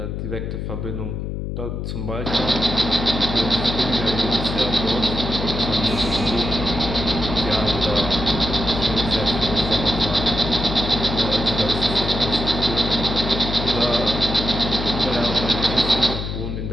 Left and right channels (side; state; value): left; noise; hum, 4 dB below the sound